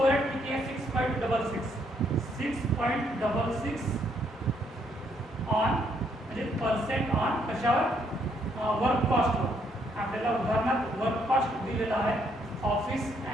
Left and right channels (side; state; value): both; normal; correlation 0.71